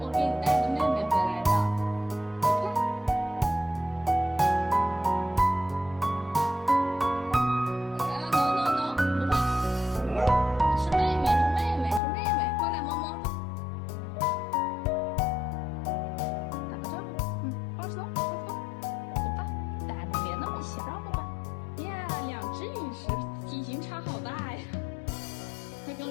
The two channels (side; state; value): right; drops out; at 12.0 s